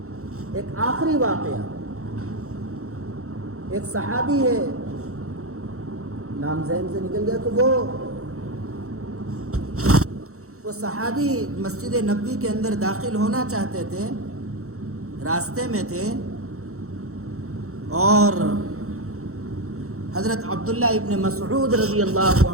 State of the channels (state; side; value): late; left; 0.64 ms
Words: ایک آخری واقعہ، ایک صحابی ہے، نام ذہن سے نکل گیا، کہ وہ صحابی مسجد نبوی کے اندر داخل ہونا چاہتے تھے، راستے میں تھے، اور حضرت عبداللہ ابن مسعود رضی اللہ